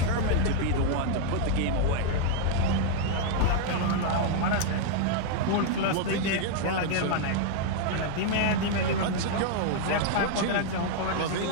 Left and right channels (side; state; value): both; different; correlation 0.00